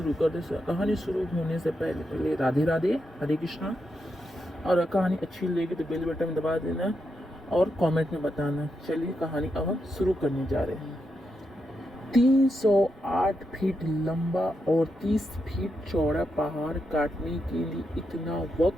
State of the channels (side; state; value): both; normal; correlation 0.84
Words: करते हैं। कहानी शुरू होने से पहले पहले राधे राधे, हरे कृष्णा। और कहानी अच्छी लगी तो बेल बटन दबा देना और कमेंट में बताना। चलिए कहानी अब हम शुरू करने जा रहे हैं। 308 फीट लंबा और 30 फीट चौड़ा पहाड़ काटने के लिए इतना